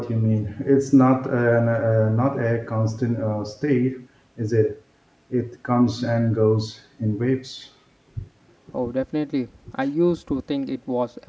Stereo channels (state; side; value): identical; both; correlation 1.00